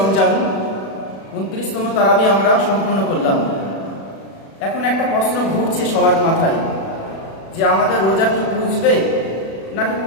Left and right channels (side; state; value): right; late; 36 ms